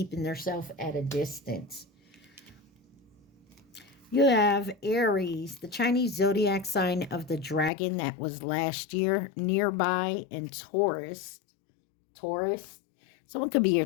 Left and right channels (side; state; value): right; drops out; at 7.7 s